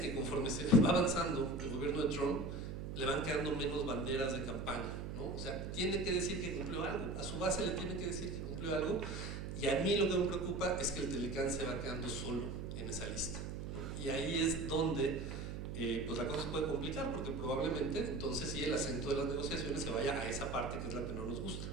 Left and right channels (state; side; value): noise; right; hum, 6 dB below the sound